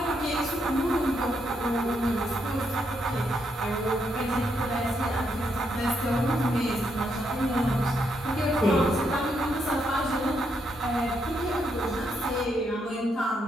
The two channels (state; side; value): normal; both; correlation 0.78